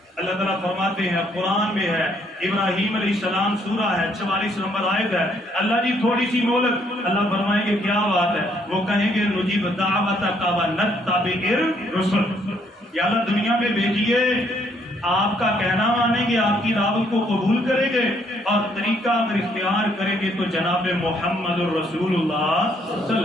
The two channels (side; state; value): both; normal; correlation 0.68